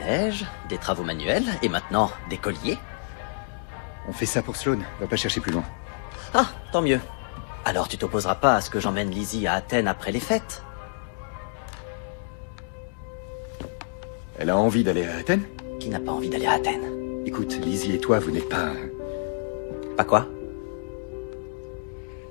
neige, des travaux manuels, et maintenant, des colliers. On fait ça pour Sloane, va pas chercher plus loin. Ah, tant mieux. Alors tu t'opposeras pas à ce que j'emmène Lizzie à Athènes après les fêtes? Elle a envie d'aller à Athènes? Qui n'a pas envie d'aller à Athènes? Écoute, Lizzie et toi, vous n'êtes pas... Pas quoi?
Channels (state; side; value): silent; right; digital silence